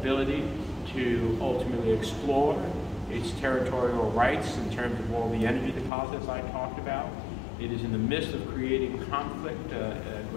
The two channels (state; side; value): drops out; right; at 5.9 s